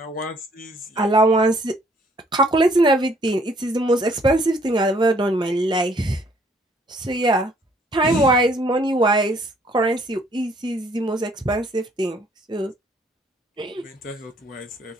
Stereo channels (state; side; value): normal; both; correlation 0.63